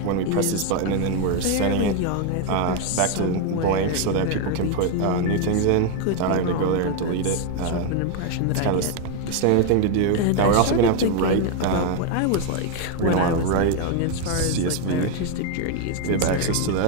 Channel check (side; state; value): both; different; correlation 0.01